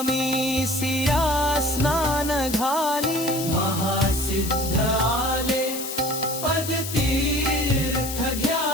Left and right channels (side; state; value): left; noise; hiss, 7 dB below the sound